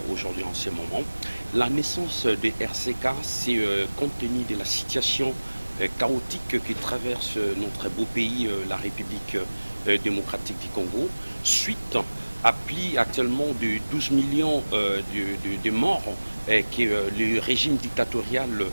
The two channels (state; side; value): inverted; both; correlation -1.00